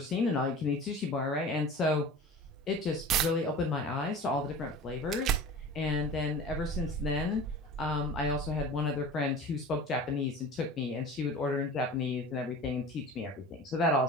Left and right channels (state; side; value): normal; both; correlation 0.38